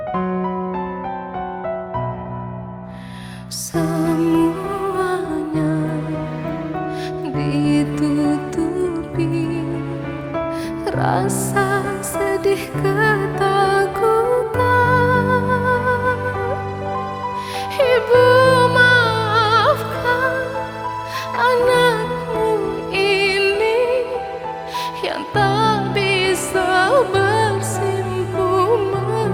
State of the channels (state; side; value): identical; both; correlation 1.00